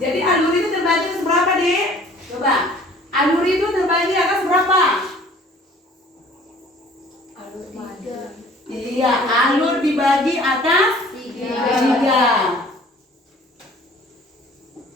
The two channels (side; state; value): both; normal; correlation 0.52